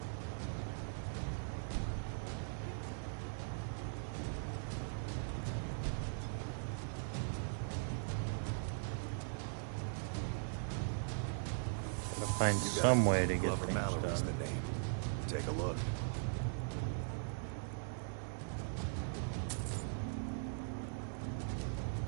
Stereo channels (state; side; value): silent; left; digital silence